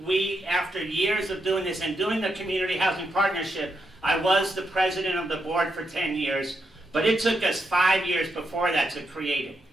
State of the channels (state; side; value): normal; both; correlation 0.82